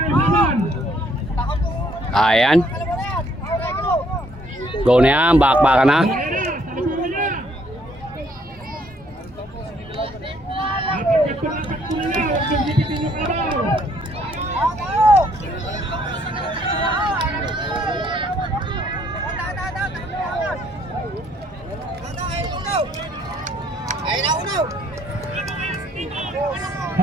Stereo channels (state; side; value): normal; both; correlation 0.65